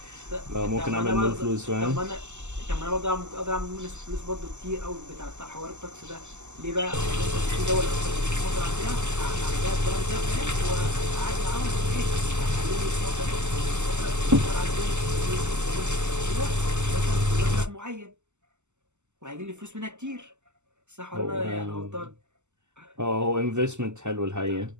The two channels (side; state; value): left; late; 0.83 ms